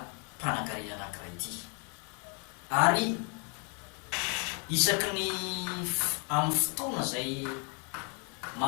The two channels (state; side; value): quieter; right; 36.8 dB